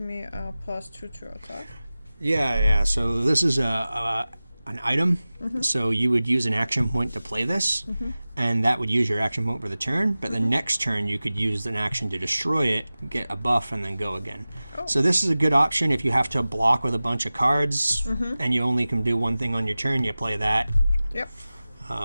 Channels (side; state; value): both; inverted; correlation -0.97